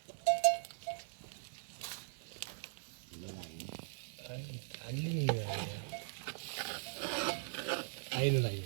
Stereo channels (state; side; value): silent; left; digital silence